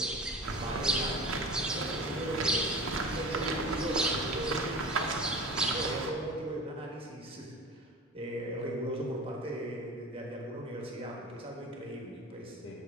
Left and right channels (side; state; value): both; normal; correlation 0.35